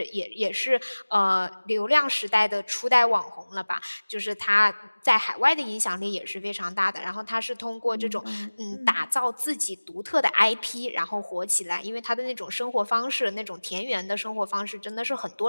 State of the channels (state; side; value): inverted; both; correlation -1.00